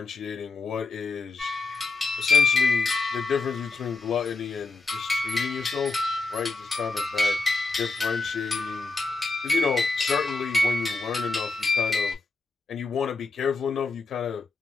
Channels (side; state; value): right; quieter; 3.8 dB